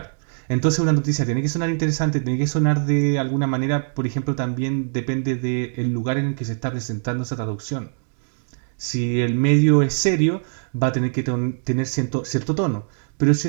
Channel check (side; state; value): left; silent; digital silence